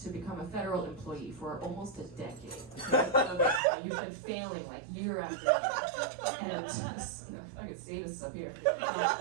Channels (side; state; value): left; drops out; at 3.6 s